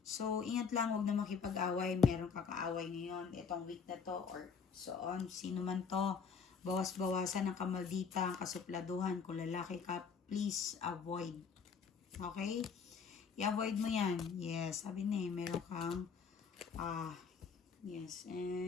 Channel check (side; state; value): right; quieter; 5.9 dB